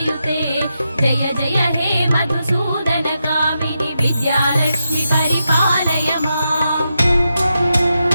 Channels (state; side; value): inverted; both; correlation -0.86